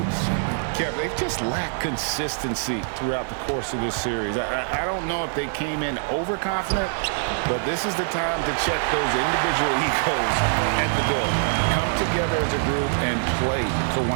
Kev, they've just lacked consistency throughout the course of this series. I don't know if they came in overconfident, but this is the time to check those individual egos at the door. Come together as a group and play for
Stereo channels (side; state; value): left; silent; digital silence